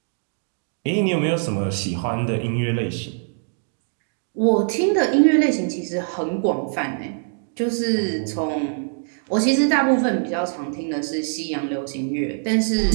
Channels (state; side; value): silent; left; digital silence